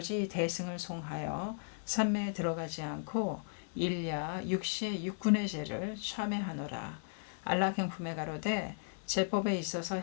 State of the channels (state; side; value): silent; right; 54 dB below the other